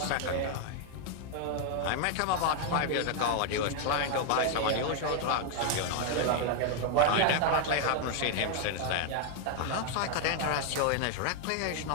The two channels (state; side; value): different; both; correlation 0.00